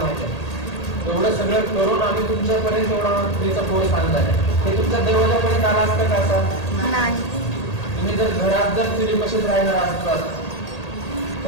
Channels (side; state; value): right; late; 1.8 ms